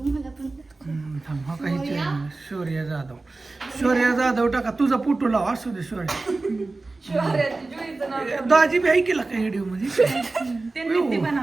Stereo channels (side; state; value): left; quieter; 3.4 dB